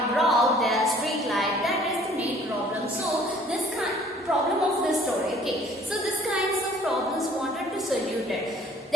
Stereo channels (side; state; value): both; normal; correlation 0.56